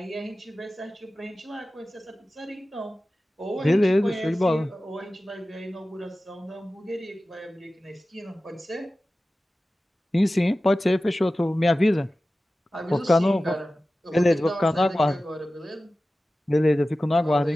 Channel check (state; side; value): normal; both; correlation 0.96